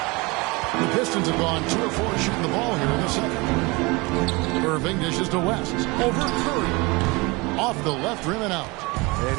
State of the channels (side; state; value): left; quieter; 25.4 dB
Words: The Pistons have gone 2 of 4 shooting the ball here in the second. Irving dishes to West. Over Curry. Off the left rim and out. And